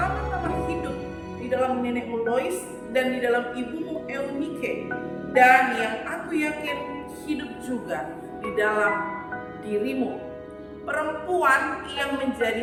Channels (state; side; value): identical; both; correlation 1.00